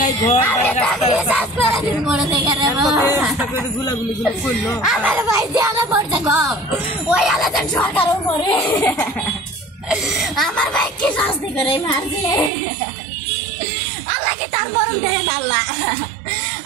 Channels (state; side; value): drops out; left; at 12.5 s